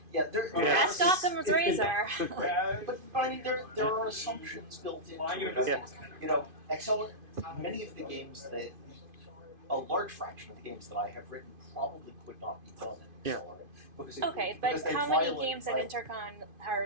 Yeah, there. Ask Occam's Razor. But I mean, there are assumptions built into it. Yeah. Accelerant. Many of the games that, a large fraction of the games that I have written probably could not be done in Accelerant. Because Okay, but how many games at Intercon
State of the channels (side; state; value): left; late; 2.5 ms